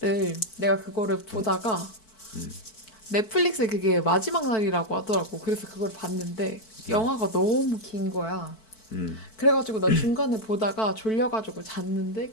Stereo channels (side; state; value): right; late; 4.5 ms